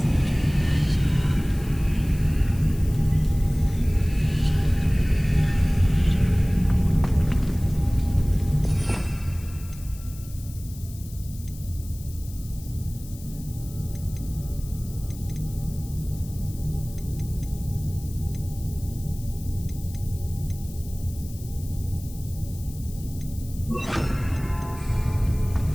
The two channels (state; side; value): noise; left; hiss, 19 dB below the sound